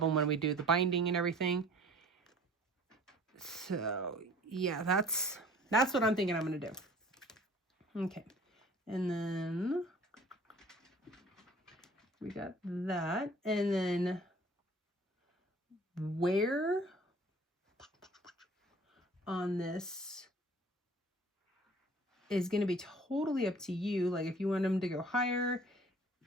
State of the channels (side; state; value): both; normal; correlation 0.49